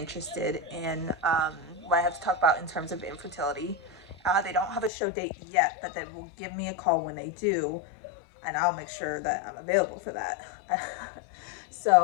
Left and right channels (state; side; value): drops out; right; at 4.9 s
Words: in what I have to talk about in terms of infertility. They don't have a show date yet, but they will give me a call when they do, and I'll make sure that I'm available for that.